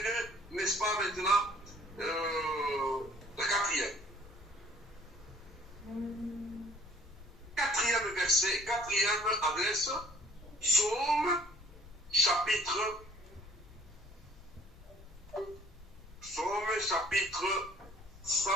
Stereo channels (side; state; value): left; noise; rumble, 20 dB below the sound